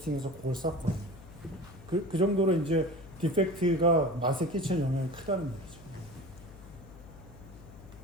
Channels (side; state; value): left; noise; hum, 18 dB below the sound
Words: 그걸 싹 보냅니다. 그 정도로 이제 디펙트가 맛에 끼치는 영향이 크다는 얘기죠.